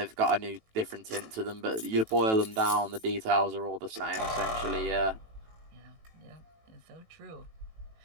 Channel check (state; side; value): late; left; 18 ms